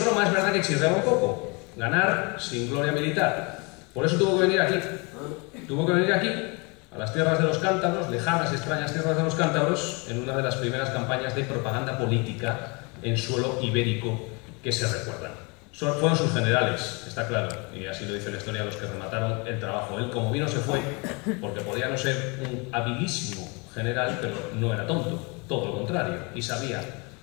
Roma es verdad que exigía un poco. Ganar sin gloria militar. Por eso tuvo que venir aquí. Tuvo que venir aquí, a las tierras de los cántabros, lejanas y extrañas tierras de los cántabros, en una de las primeras campañas de propaganda política en suelo ibérico que se recuerdan. Fueron sus generales, está claro, y así lo dice la historia, los que remataron el trabajo. Él, como vino, se fue, porque podía no ser un habilísimo general, pero no era tonto, todo lo contrario, y sabía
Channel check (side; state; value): right; quieter; 30.1 dB